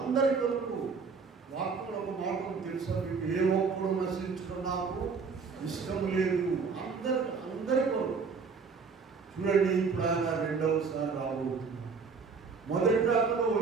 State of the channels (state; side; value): quieter; left; 5.1 dB